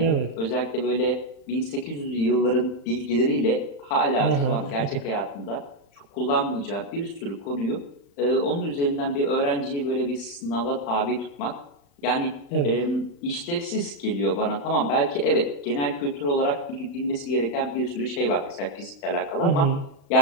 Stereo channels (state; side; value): late; right; 35 ms